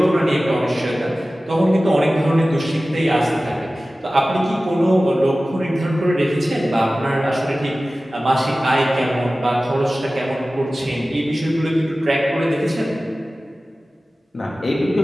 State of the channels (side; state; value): both; normal; correlation 0.96